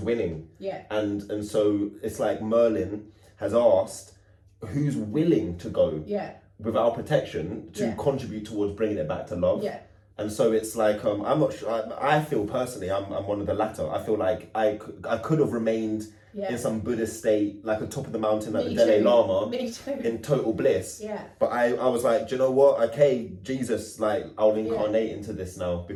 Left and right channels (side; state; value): both; identical; correlation 1.00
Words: winning. Yeah. And so it's like Merlin has asked who's willing to go with our protection to contribute towards bringing it back to love. Yeah. And so it's like I'm not sure. I feel personally I'm one of the latter. I feel like I could have remained in some Buddhist state, like on top of the mountain, like the Dalai Lama, in total bliss. Yeah. But I was like, do you know what? Okay, Jesus, like I'll incarnate into this now